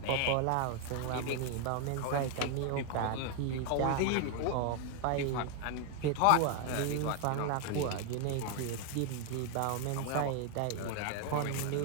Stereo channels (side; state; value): both; different; correlation 0.01